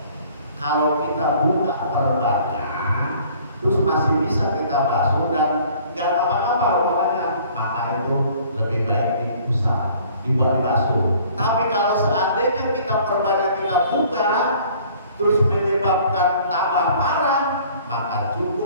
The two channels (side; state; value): both; inverted; correlation -0.54